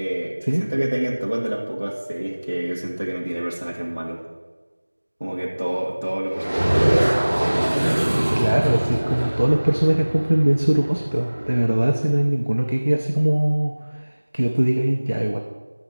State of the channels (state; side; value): inverted; both; correlation -1.00